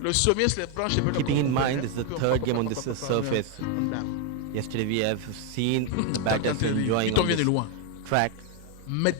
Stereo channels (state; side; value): different; both; correlation 0.01